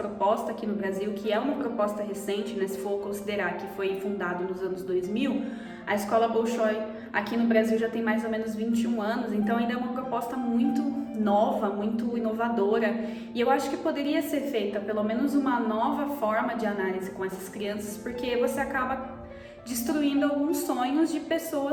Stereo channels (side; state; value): both; identical; correlation 1.00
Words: aqui no Brasil, que é uma proposta recente, né, se for considerar que foi fundado nos anos 2000, a escola Bolshoi aqui no Brasil já tem mais ou menos 21 anos, então ainda é uma proposta muito nova, muito inovadora, e eu acho que poderia ser feita pelo menos uma nova forma de análise com essas crianças, porque você acaba destruindo alguns sonhos de